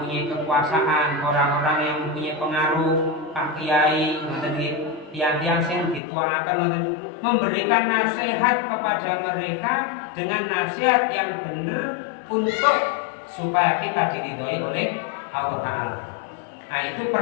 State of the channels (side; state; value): right; drops out; at 6.0 s